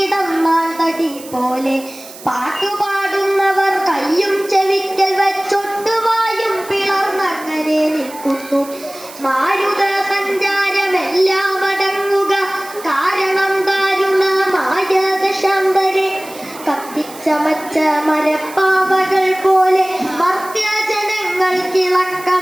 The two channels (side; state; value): right; noise; hiss, 17 dB below the sound